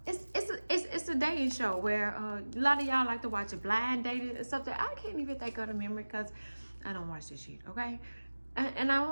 It's a dating show where a lot of y'all like to watch a blind dating or something. I can't even think of the memory because I don't watch this shit, okay? And I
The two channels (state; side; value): inverted; both; correlation -1.00